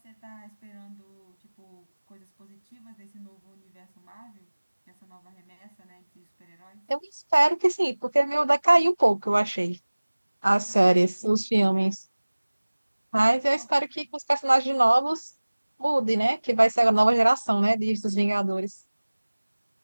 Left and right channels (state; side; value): inverted; both; correlation -1.00